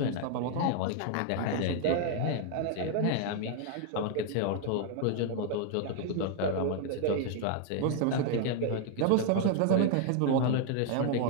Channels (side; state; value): both; different; correlation 0.00